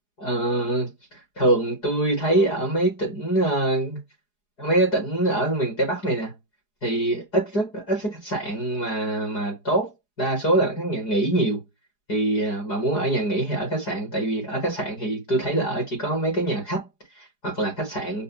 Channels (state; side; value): late; right; 4.8 ms